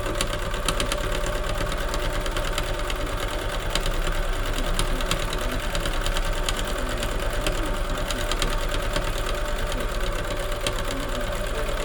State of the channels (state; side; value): identical; both; correlation 1.00